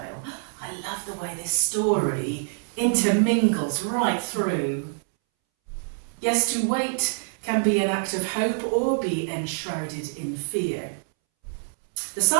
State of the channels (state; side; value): silent; left; 61 dB below the other